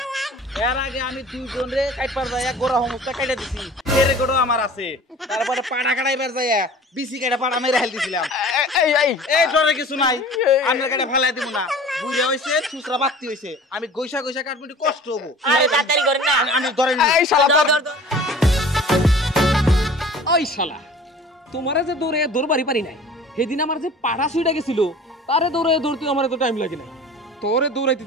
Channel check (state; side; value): normal; both; correlation 0.43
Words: এর আগে আমি 2 জন রে কাটপার যাইয়া গোড়া সমস্ত কাটা দিছি, এর গোড়া আমার আছে। তারপরে পাড়া কাটাইবার যাইয়া বিসি কাটা পাড়া মেরে হেল দিছিলাম। এই ডরে কিছু নাই, আমরা কাটা ফেলাই দিব না। বুড়া হইছে, সুসরা বাতি হইছে, আমি গইসা গইসা কাটবো, কষ্ট হবো। আরে তাড়াতাড়ি করেন না, আমি ধরে নি। এই শালা ধর, ধর, ধর। ওই শালা তোমারে যে দৌড়ে দৌড়বাড়ি পারি নাই, সেদিন আমার যে পাড়া সুইটা গেছিল তারে দৌড়ে দৌড়তে আমার তো টাইম লাগে নাই। তোরে দৌড়াইতি